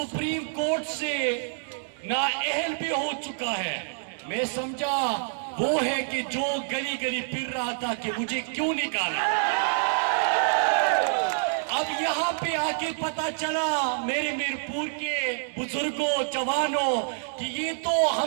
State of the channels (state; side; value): silent; left; digital silence